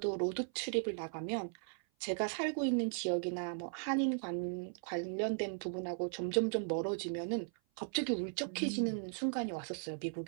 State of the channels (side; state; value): left; silent; 53 dB below the other